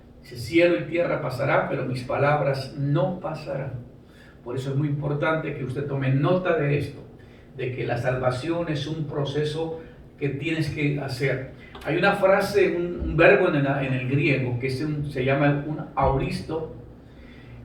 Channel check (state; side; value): identical; both; correlation 1.00